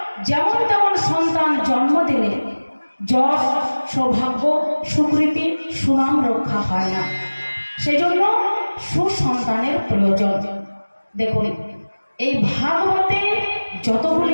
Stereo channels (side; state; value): both; inverted; correlation -1.00